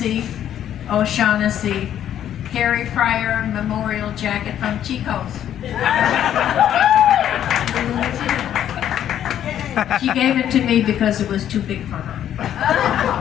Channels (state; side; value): quieter; right; 10.6 dB